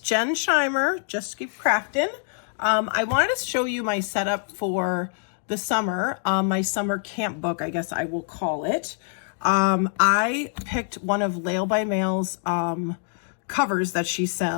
Scheimer, Just Keep Crafting. I wanted to show you my setup for the summer, my summer camp book, I guess I will call it. I picked one of Lail by Mail's covers that she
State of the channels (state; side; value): silent; right; digital silence